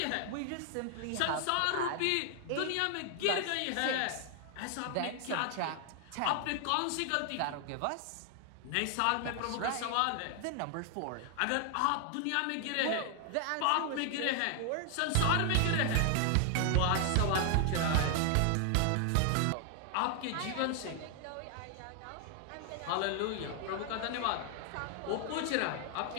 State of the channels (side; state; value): both; different; correlation 0.00